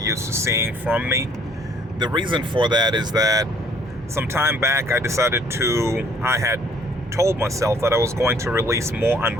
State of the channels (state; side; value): normal; both; correlation 0.60